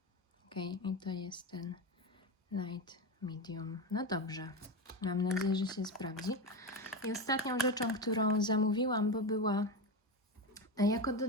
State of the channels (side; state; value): both; normal; correlation 0.17